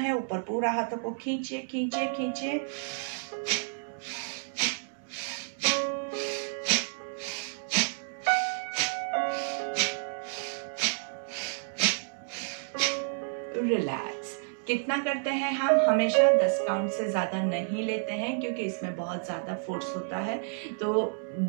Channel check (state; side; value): silent; left; digital silence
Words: ऊपर पूरा हाथों को खींचिए खींचिए खींचिए। रिलैक्स। कितना करते हैं हम? हमेशा 10 काउंट से ज्यादा नहीं लेते हैं क्योंकि इसमें बहुत ज्यादा फोर्स होता है। तो